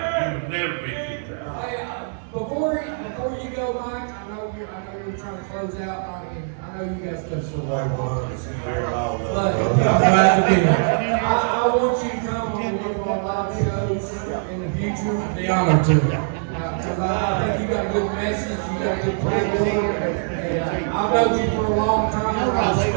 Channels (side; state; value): left; silent; 64 dB below the other